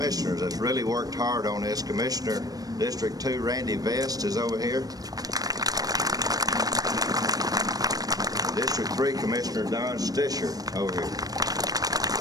that's really worked hard on this. Commissioner District 2, Randy Vest, is over here. District 3 Commissioner Don Stisher over here.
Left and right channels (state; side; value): late; left; 0.18 ms